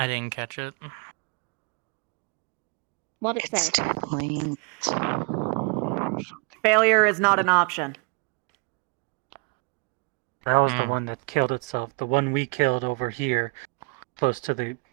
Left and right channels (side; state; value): left; quieter; 33.3 dB